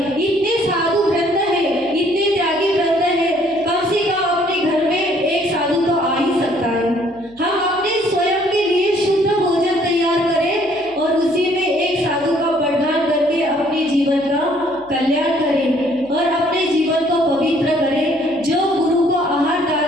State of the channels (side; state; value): left; noise; hum, 29 dB below the sound